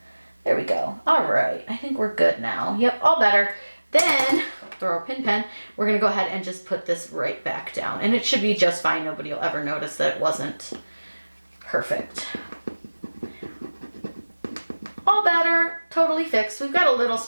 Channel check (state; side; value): inverted; both; correlation -1.00